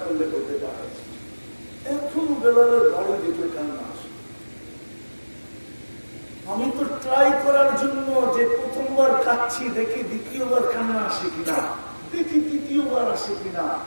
করলে হতে পারে। এখন বেলালের বাড়ি দেখলে কান্না আসে। আমি তো ট্রাই করার জন্য যে প্রথমবার কাঁদছি, দেখি দ্বিতীয়বার কান্না আসে কিনা, দেখি তৃতীয়বার আসে কিনা,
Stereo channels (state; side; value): inverted; both; correlation -1.00